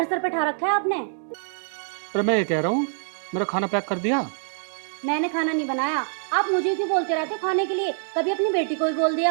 सर पे ठा रखा है आपने? अरे मैं ये कह रहा हूँ, मेरा खाना पैक कर दिया? मैंने खाना नहीं बनाया। आप मुझे क्यों बोलते रहते हो खाने के लिए? कभी अपनी बेटी को भी बोल दिया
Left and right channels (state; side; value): silent; left; digital silence